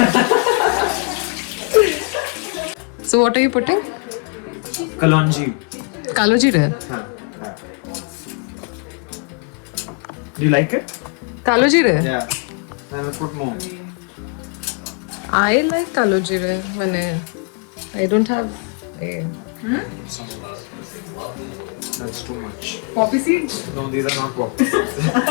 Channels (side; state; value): right; quieter; 37.3 dB